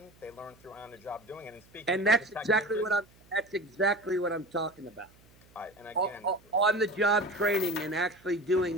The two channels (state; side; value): noise; right; hum, 28 dB below the sound